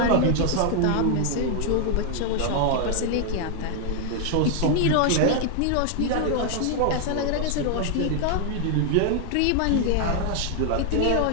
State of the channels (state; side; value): different; both; correlation 0.00